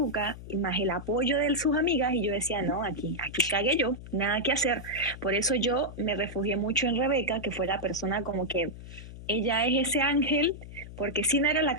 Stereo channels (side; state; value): left; noise; hum, 13 dB below the sound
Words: y más el apoyo de sus amigas y yo decía, no, aquí cagué yo, nada que hacer. Por eso yo me refugié mucho en Rebeca, que fue la persona como que ella es ese ángel, porque sí no era la